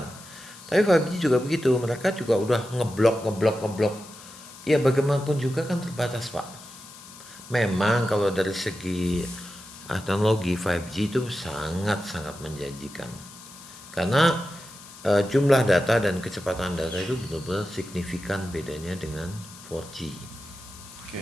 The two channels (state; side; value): noise; left; hiss, 18 dB below the sound